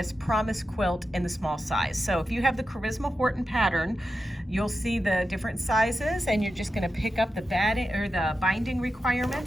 Promise quilt in the small size. So if you have the Charisma Horton pattern, you'll see the different sizes, and you're just gonna pick up the batting or the binding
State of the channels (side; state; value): both; normal; correlation 0.90